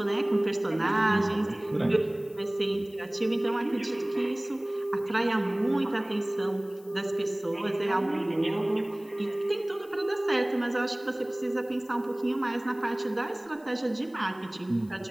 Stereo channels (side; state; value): left; noise; hiss, 28 dB below the sound